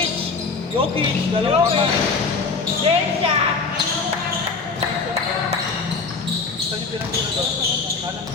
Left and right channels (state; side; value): quieter; right; 4.5 dB